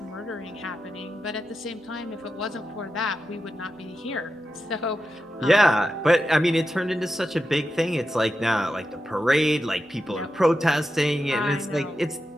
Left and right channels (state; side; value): normal; both; correlation 0.89